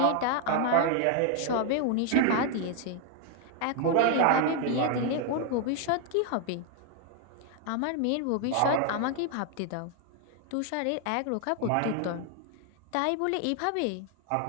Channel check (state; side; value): different; both; correlation 0.00